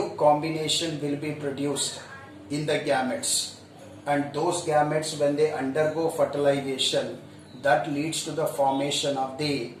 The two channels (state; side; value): identical; both; correlation 1.00